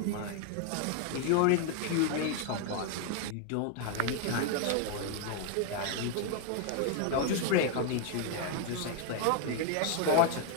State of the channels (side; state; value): both; different; correlation 0.00